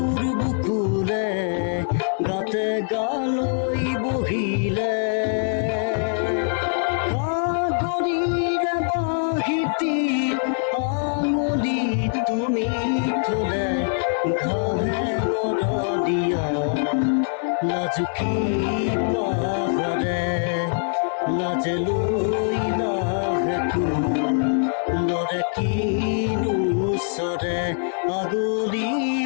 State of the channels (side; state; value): right; silent; 63 dB below the other